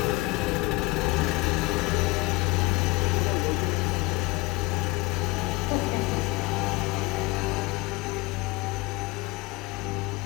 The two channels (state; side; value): quieter; right; 21.7 dB